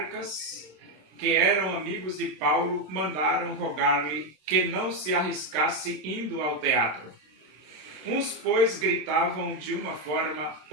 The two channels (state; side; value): late; left; 26 ms